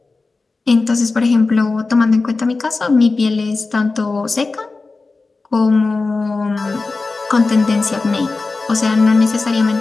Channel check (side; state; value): right; quieter; 3.7 dB